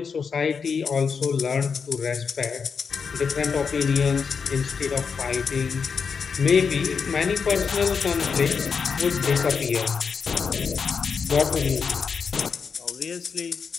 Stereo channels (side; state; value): right; quieter; 5.9 dB